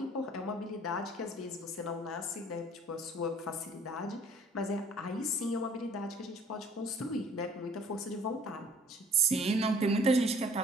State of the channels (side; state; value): both; normal; correlation 0.55